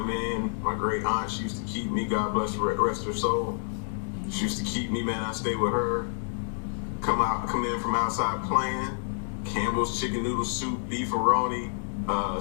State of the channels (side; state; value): right; silent; digital silence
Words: in. My great aunt, she used to keep me, God bless her, rest her soul. She used to keep me, man. I stayed with her. Come in from outside playing. Campbell's chicken noodle soup, beefaroni,